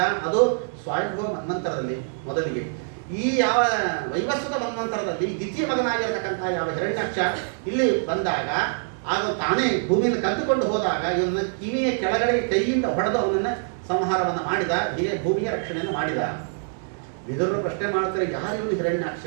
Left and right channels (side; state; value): left; silent; 62 dB below the other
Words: ಅದು ಸ್ವಯಂಭವ ಮನ್ವಂತರದಲ್ಲಿ ಮೊದಲಿಗೆ. ಈ ಯಾವ ವೈವಸ್ವತ ಮನ್ವಂತರದಲ್ಲಿ ದ್ವಿತೀಯ ಮಗನಾಗಿರತಕ್ಕಂಥ ಯಾವ ಹಿರಣ್ಯಾಕ್ಷ ಇಲ್ಲಿ ಬಂದಾಗ, ಆಗ ತಾನೇ ಭೂಮಿಯನ್ನು ಕದ್ದುಕೊಂಡು ಹೋದಾಗ ಇವನ್ನ ಕಿವಿಯ ಕೆಳಗಡೆ ಕೈಯಿಂದ ಹೊಡೆದು ಅವನನ್ನ ಸಂಹಾರವನ್ನು ಮಾಡಿದ. ಹೀಗೆ ಭೂಮಿಯ ರಕ್ಷಣೆಯನ್ನು ಮಾಡಿದ. ವಿದುರರು ಪ್ರಶ್ನೆ ಮಾಡ್ತಾರೆ, ಯಾರು ಇವನು ಹಿರಣ್ಯಾಕ್ಷ,